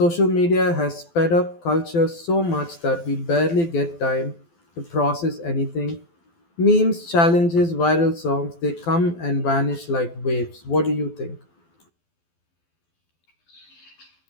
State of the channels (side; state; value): right; late; 12 ms